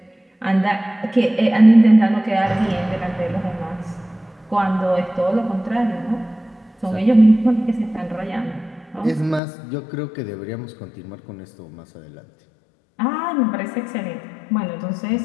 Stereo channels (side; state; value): right; drops out; at 9.4 s